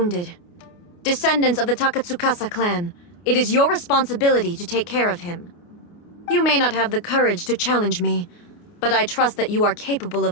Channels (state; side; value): late; right; 29 ms